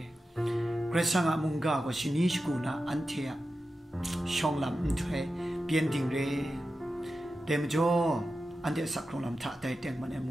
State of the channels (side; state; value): both; normal; correlation 0.92